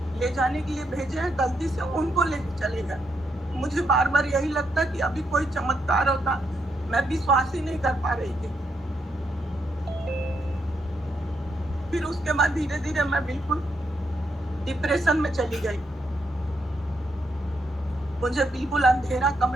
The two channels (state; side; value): normal; both; correlation 0.79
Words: ले जाने के लिए भेजे हैं, गलती से उनको लेके चले गए। मुझे बार बार यही लगता कि अभी कोई चमत्कार होता। मैं विश्वास ही नहीं कर पा रही थी। फिर उसके बाद धीरे धीरे मैं बिल्कुल डिप्रेशन में चली गई। मुझे बिल्कुल अंधेरा